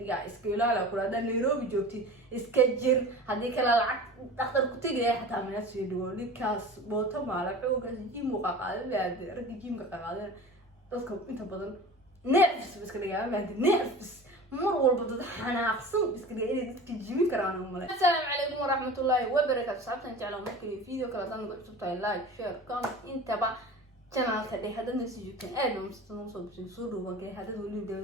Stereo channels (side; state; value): both; normal; correlation 0.36